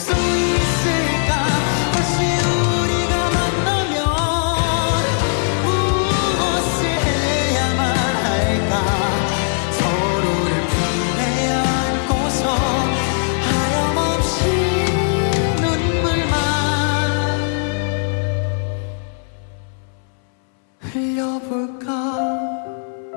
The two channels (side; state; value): right; silent; 66 dB below the other